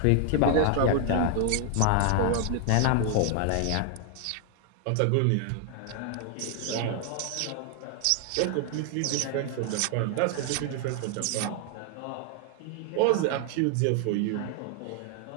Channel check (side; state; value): both; different; correlation 0.00